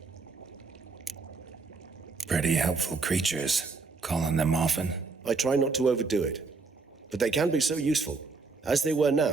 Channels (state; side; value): quieter; left; 4.2 dB